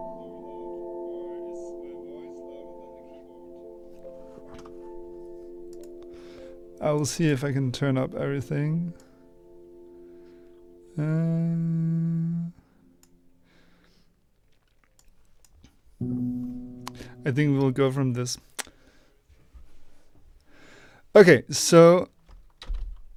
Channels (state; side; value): identical; both; correlation 1.00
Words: I will see if I can turn up everything. I think we'll go from this. Okay, so